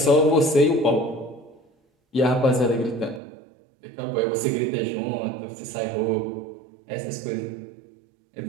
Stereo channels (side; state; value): left; drops out; at 3.2 s